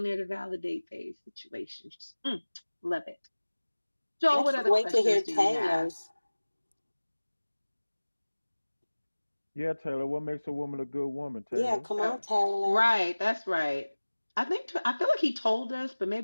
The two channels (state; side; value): inverted; both; correlation -1.00